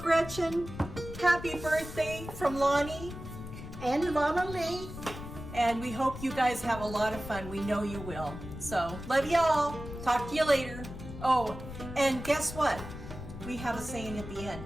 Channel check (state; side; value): noise; left; rumble, 11 dB below the sound